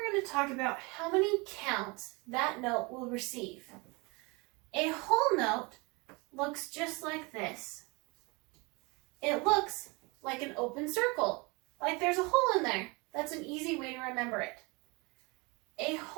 going to talk about how many counts that note will receive. A whole note looks just like this. It looks like an open circle, like there's a hole in there. That's an easy way to remember it. A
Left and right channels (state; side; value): quieter; left; 27.6 dB